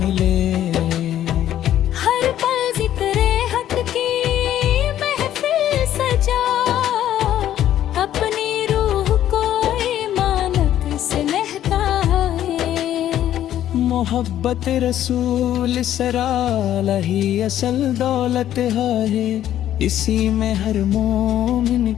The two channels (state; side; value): quieter; right; 11.7 dB